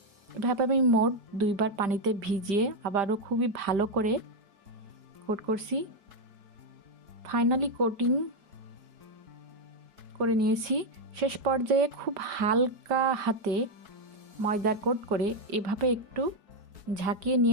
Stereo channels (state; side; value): late; left; 5.1 ms